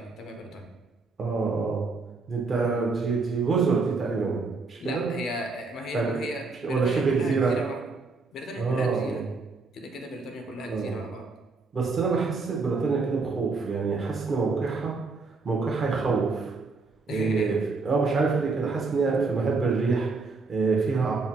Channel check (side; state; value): left; quieter; 4.0 dB